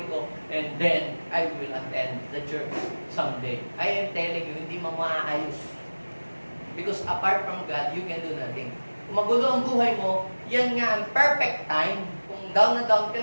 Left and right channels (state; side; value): inverted; both; correlation -1.00